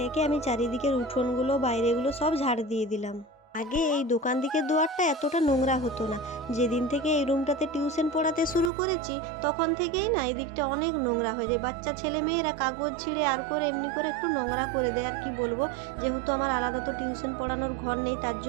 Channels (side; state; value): left; drops out; at 8.7 s